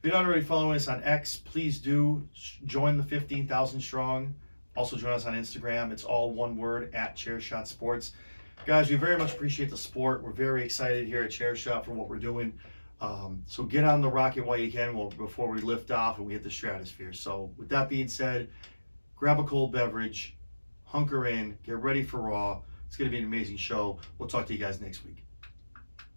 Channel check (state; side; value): inverted; both; correlation -1.00